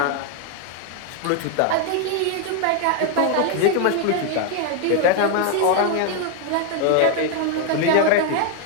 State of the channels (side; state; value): both; different; correlation 0.01